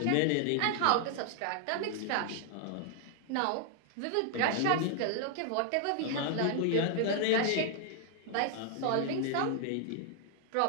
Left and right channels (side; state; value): both; different; correlation 0.00